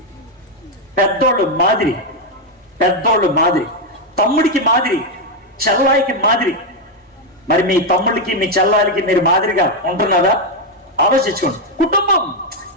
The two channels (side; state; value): both; normal; correlation 0.03